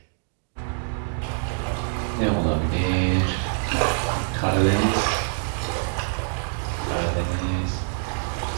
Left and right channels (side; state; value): left; silent; digital silence